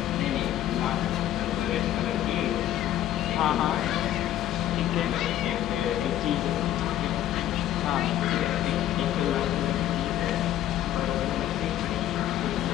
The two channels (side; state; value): right; quieter; 12.4 dB